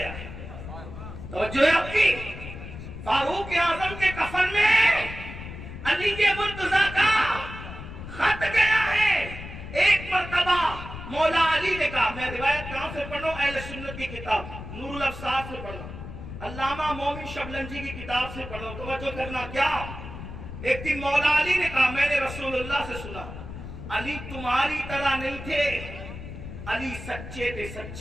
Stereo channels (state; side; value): noise; left; rumble, 11 dB below the sound